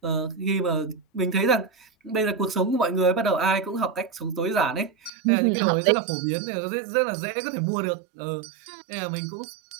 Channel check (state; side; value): drops out; left; at 5.1 s